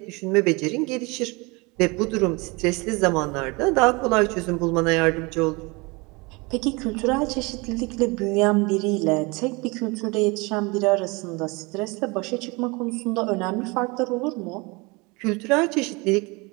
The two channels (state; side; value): quieter; left; 26.7 dB